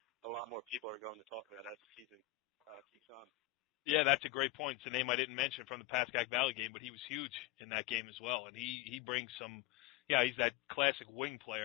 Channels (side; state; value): right; quieter; 15.7 dB